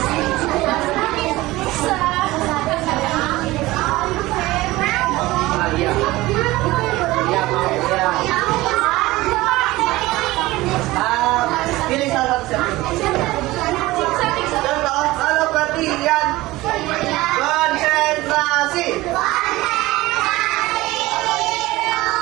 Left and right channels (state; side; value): quieter; left; 18.8 dB